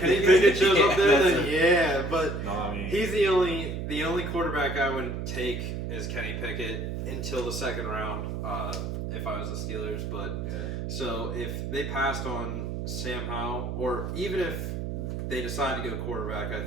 Pickett shows up there, That's then yeah. But No, I mean, he's the only quarterback I would take is Kenny Pickett until the second round. If I was the Steelers, but yeah. so if they passed on Sam Howell, or even if they decide to go quarterback, I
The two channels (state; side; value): noise; right; hum, 4 dB below the sound